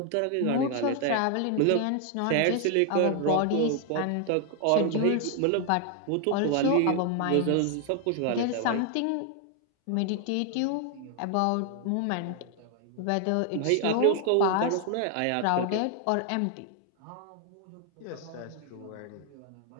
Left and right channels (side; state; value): both; different; correlation 0.00